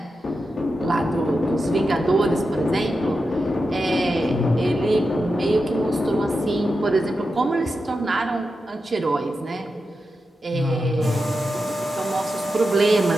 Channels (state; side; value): normal; both; correlation 0.89